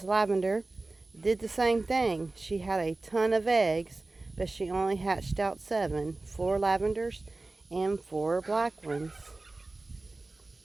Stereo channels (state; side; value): quieter; left; 3.2 dB